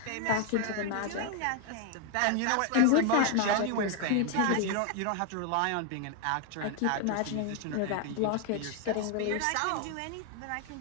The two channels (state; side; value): different; both; correlation 0.00